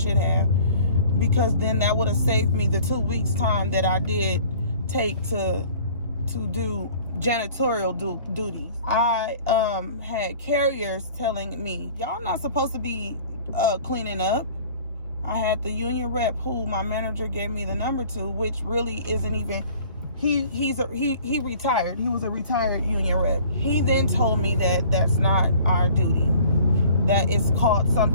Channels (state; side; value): inverted; both; correlation -0.50